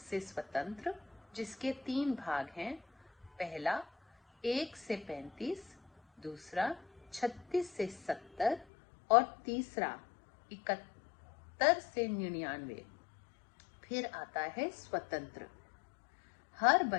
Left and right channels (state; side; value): drops out; right; at 8.7 s